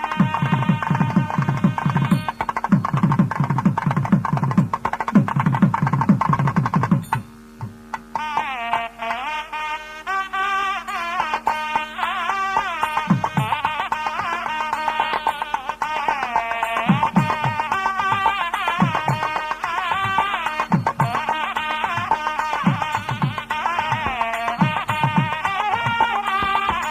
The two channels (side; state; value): both; identical; correlation 1.00